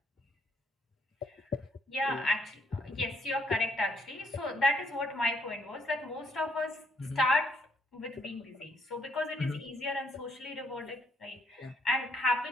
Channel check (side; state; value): both; normal; correlation 0.71